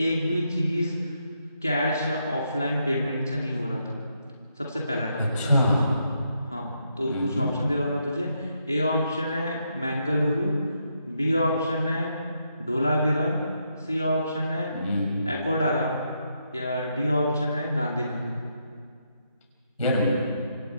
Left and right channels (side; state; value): both; inverted; correlation -0.79